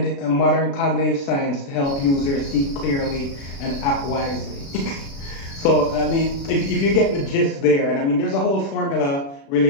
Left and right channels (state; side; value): late; right; 36 ms